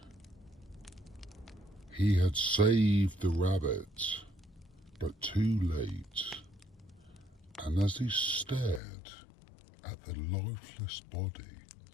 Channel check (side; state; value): right; drops out; at 8.8 s